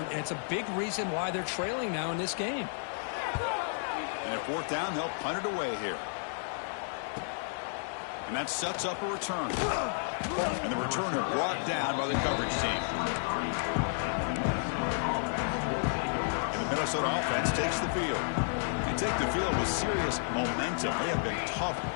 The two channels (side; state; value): right; silent; digital silence